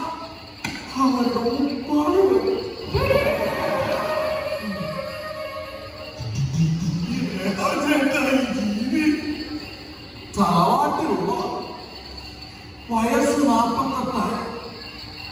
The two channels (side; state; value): both; identical; correlation 1.00